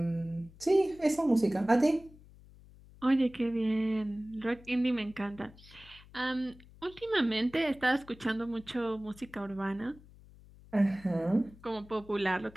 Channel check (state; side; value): noise; left; hum, 22 dB below the sound